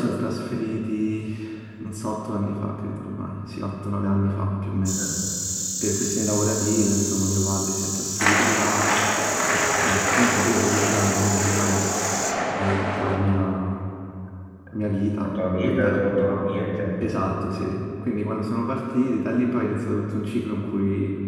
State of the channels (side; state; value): both; identical; correlation 1.00